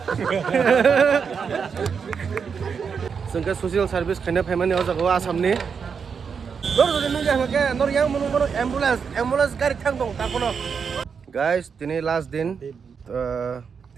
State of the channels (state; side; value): quieter; left; 6.2 dB